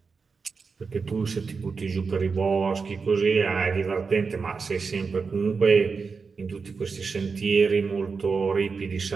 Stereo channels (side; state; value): left; quieter; 5.0 dB